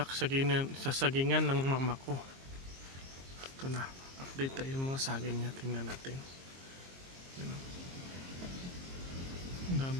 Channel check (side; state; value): left; late; 22 ms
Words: sagingan ng mama ko. Ito na. Update tayo yung mga saging niya. Tingnan natin. Yan o. Ang